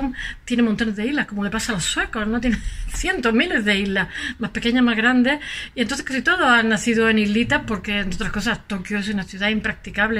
tiene montones de islas, como le pasa a los suecos, ¿no? Tiene cientos, miles de islas, más pequeñas, más grandes, y entonces casi todos han nacido en islitas, porque entre otras cosas Tokio es una ciudad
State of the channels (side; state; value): both; identical; correlation 1.00